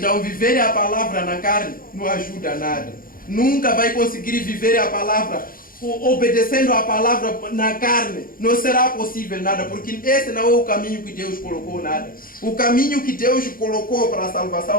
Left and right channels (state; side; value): late; right; 0.41 ms